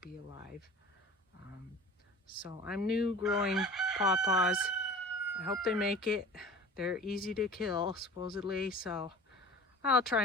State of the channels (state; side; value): normal; both; correlation 0.40